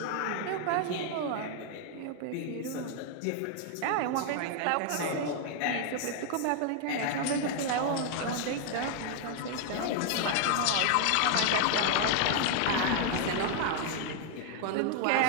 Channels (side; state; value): both; different; correlation 0.00